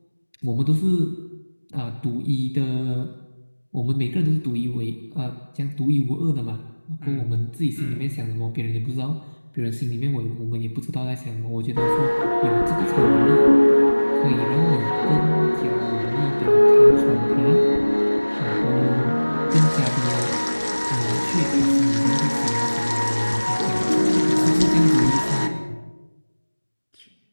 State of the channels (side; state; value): both; inverted; correlation -1.00